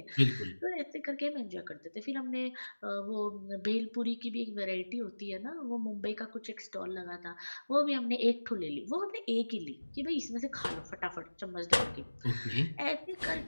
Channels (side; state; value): both; inverted; correlation -1.00